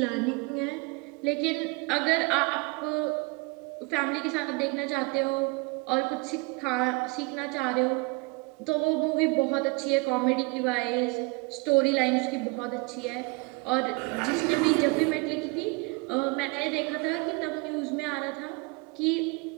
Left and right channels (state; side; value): quieter; left; 28.3 dB